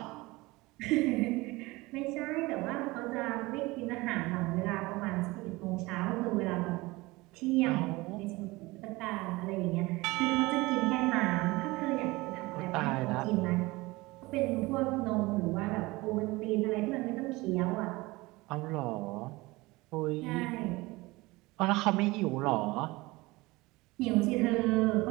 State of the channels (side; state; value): left; quieter; 21.7 dB